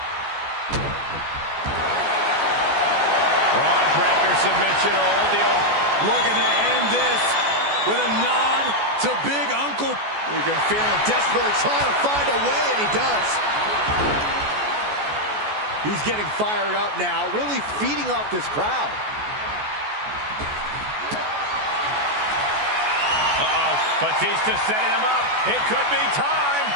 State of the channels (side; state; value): left; late; 14 ms